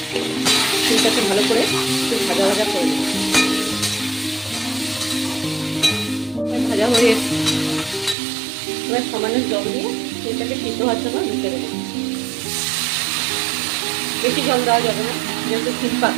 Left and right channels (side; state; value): left; drops out; at 8.2 s